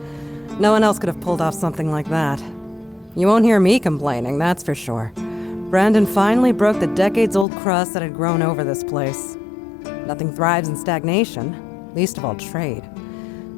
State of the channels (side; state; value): right; drops out; at 7.5 s